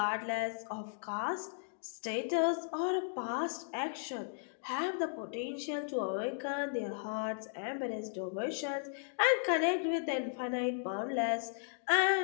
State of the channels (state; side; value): silent; right; digital silence